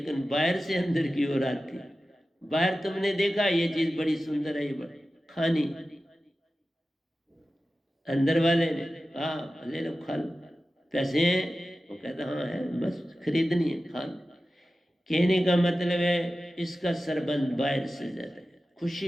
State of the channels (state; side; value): normal; both; correlation 0.94